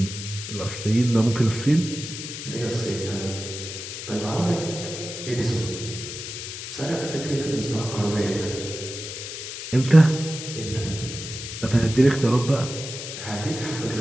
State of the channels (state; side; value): noise; left; hiss, 8 dB below the sound